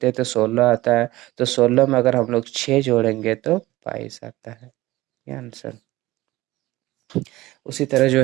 हैं तो 16 आता है। तो 16 में अगर हम लोग 6 जोड़ेंगे तो 22 आता है। ये आंसर। उसी तरह जो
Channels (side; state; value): left; quieter; 18.1 dB